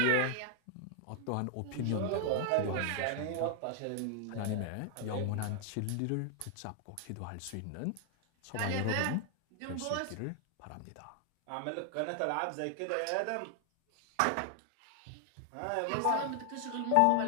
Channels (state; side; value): different; both; correlation 0.00